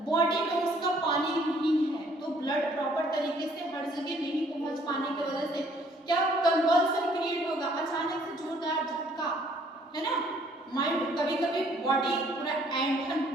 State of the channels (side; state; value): both; normal; correlation 0.62